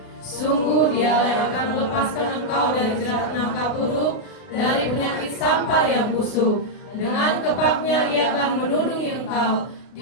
Sungguh Dialah yang akan melepaskan engkau dari jerat nangka burung, dari penyakit sampar yang busuk. Dengan kepaknya Ia akan menudungi engkau,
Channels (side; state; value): right; late; 33 ms